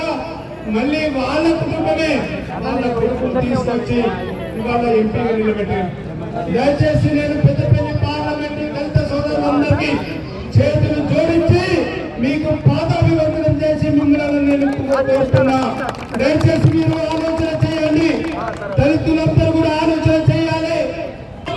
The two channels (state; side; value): identical; both; correlation 1.00